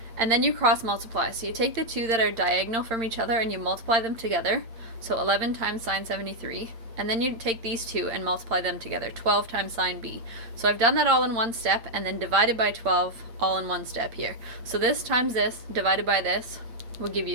And then you cross multiply. So you take the two that are diagonal from each other and you multiply them together. So 11 times sine 73. And then you take these two and multiply them together, 12 times sine B. So I've done that all in one step, and then divided by 12 all in one step here. So this times this divided by this will give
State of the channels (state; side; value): late; left; 8.8 ms